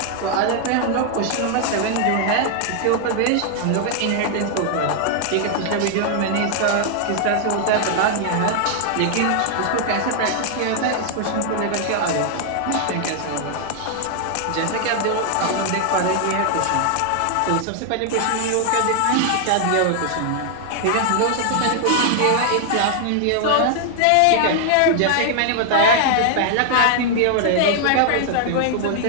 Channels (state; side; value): different; both; correlation 0.00